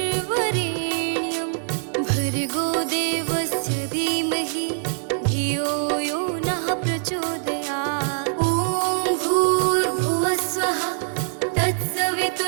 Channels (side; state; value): left; silent; digital silence